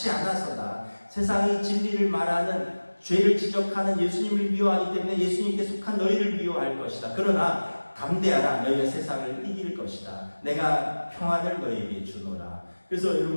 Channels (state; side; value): inverted; both; correlation -1.00